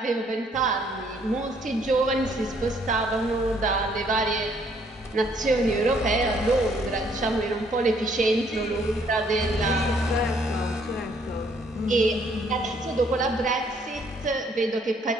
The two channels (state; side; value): normal; both; correlation 0.66